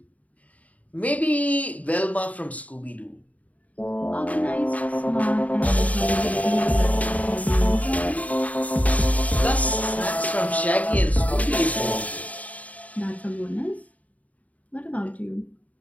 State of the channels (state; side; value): late; right; 0.070 ms